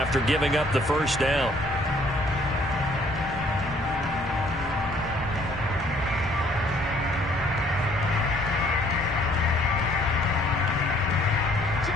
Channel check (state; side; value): noise; left; rumble, 14 dB below the sound